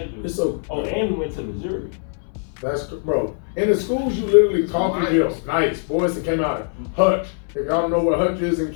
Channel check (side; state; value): right; silent; 60 dB below the other